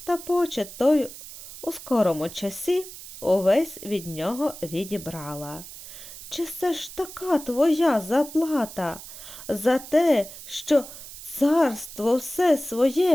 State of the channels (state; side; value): noise; right; hiss, 14 dB below the sound